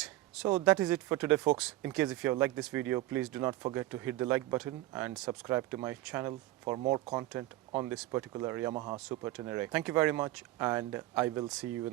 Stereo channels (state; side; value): quieter; left; 16.8 dB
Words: So that is it for today, folks. In case if you have liked this video, please do not forget to hit the like button and subscribe to my channel for more content on this particular Yamaha Super Tenere. Thank you very much, and I will see you